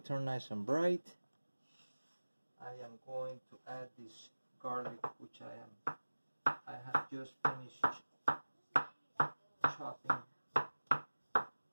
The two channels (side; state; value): both; inverted; correlation -1.00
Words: nice and bright, I am going to add this garlic, which I have just finished chopping